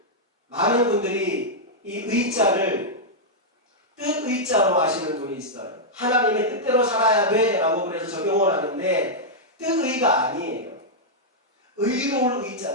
많은 분들이 이 의자를 뜻의자로 하시는 분이 있어요. 하나님의 뜻대로 살아야 돼 라고 그래서 적용을 하는데 뜻의가 아니에요. 의로울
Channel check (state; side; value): normal; both; correlation -0.06